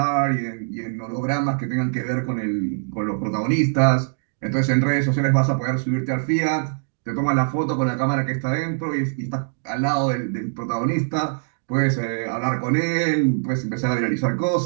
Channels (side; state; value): left; silent; digital silence